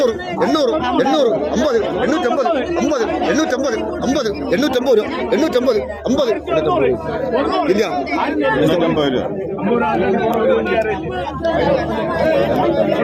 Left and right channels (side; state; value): both; identical; correlation 1.00